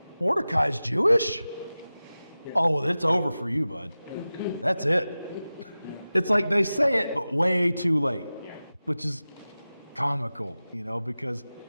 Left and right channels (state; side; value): inverted; both; correlation -0.96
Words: Mordecai's Jewish? Oh, well, it's over for you, bud. That's it. It's like they say it, but way too late, which is comical, because